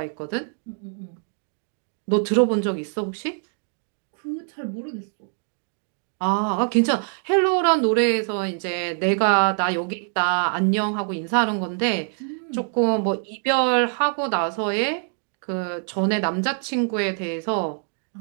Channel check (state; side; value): silent; left; 56 dB below the other